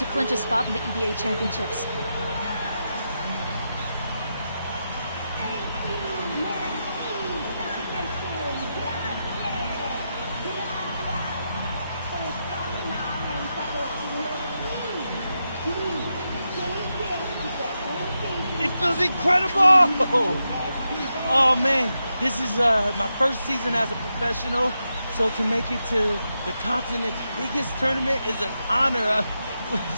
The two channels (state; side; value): inverted; both; correlation -0.87